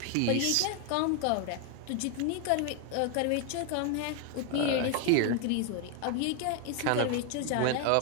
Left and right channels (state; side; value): different; both; correlation 0.01